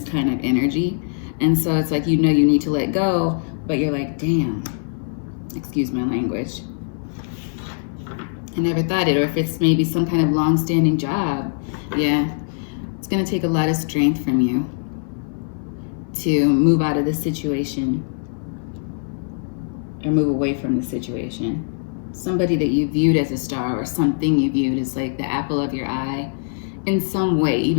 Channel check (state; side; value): silent; right; 60 dB below the other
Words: kind of energy. And so it's like, you know you need to let go, but you're like, damn, excuse my language, I never thought it. Or if it's maybe some kind of long-standing job, yeah, it's gonna take a lot of strength from you to move out of this situation or move away from the situation. Somebody that you viewed as a star or something you viewed as like the apple of your eye in some way,